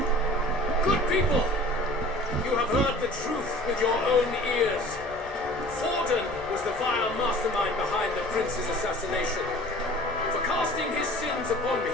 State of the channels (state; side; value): normal; both; correlation 0.45